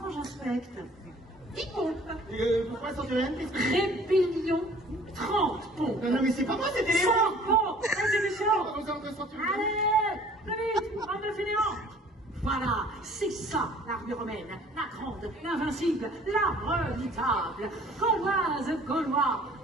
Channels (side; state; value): both; normal; correlation 0.53